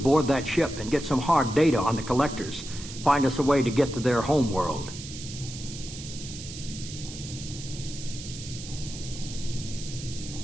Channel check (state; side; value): noise; right; hiss, 12 dB below the sound